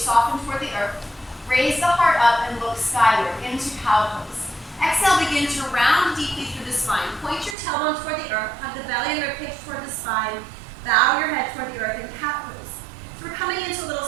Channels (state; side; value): drops out; left; at 7.6 s